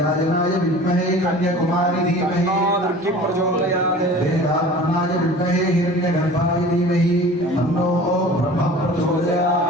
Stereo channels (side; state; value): both; normal; correlation 0.42